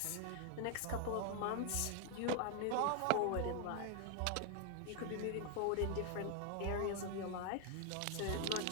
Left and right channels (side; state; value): both; different; correlation 0.00